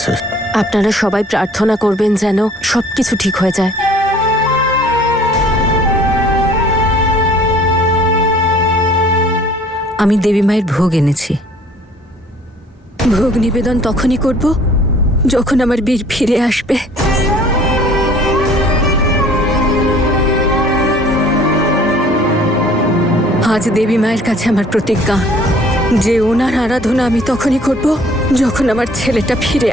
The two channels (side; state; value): both; normal; correlation 0.54